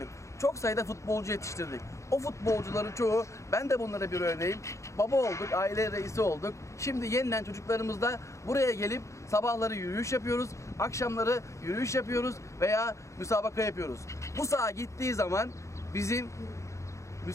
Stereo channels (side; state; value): right; late; 0.15 ms